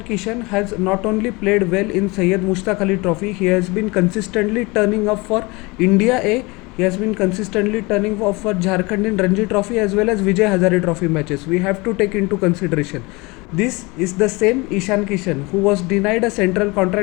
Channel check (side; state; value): right; quieter; 25.1 dB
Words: Kishan has not only played well in Syed Mushtaq Ali Trophy, he has been consistently turning up for India A. He has been consistently turning up for Jharkhand in Ranji Trophy as well as Vijay Hazare Trophy matches. We have to take into consideration. This is the same Ishan Kishan who was denied a central